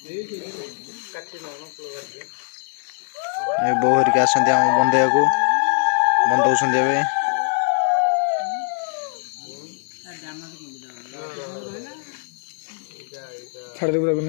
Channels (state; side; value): silent; right; 64 dB below the other